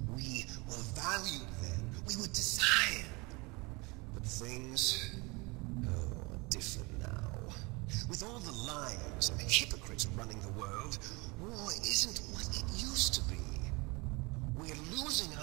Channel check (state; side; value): quieter; left; 26.5 dB